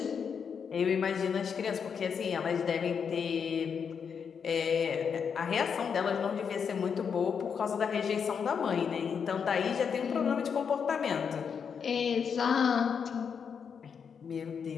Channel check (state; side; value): quieter; right; 6.7 dB